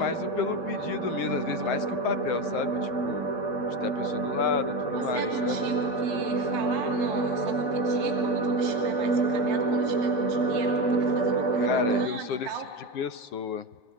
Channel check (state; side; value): late; right; 8.6 ms